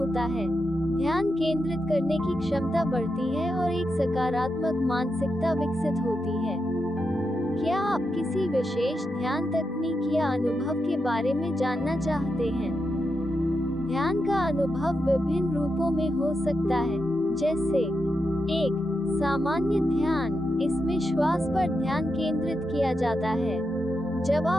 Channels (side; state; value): both; normal; correlation 0.86